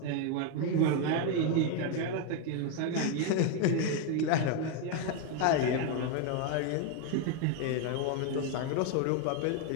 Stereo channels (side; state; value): both; different; correlation 0.01